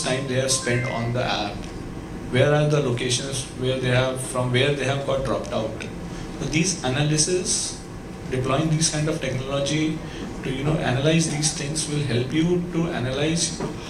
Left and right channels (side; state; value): both; identical; correlation 1.00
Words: time they have spent on the app, where are the locations where they have got dropped out. So these analysis, deploying these kind of technology to analyze these things will help you to analyze